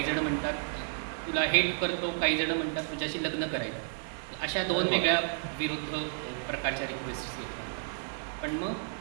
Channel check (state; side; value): silent; left; digital silence